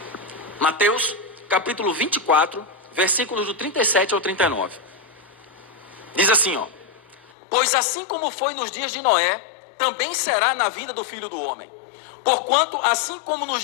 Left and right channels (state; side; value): drops out; right; at 7.3 s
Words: Mateus capítulo 24, versículos do 37 ao 39. Diz assim, ó: pois assim como foi nos dias de Noé, também será na vinda do Filho do Homem. Porquanto, assim como